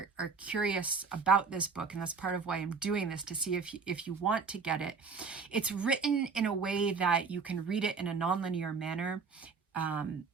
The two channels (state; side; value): quieter; left; 5.1 dB